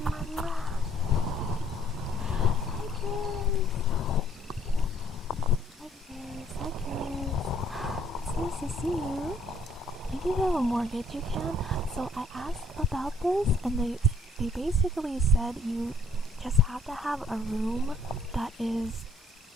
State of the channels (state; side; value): normal; both; correlation 0.63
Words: mwah, mwah. Hi Chris. Hi Chris. Hi Chris. It's nice to see you. If you have a mortgage, you can. So I asked about this, and they basically said you just have to have a room that is